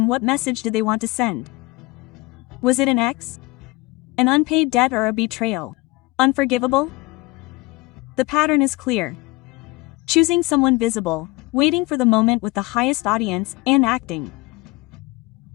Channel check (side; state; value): right; quieter; 23.1 dB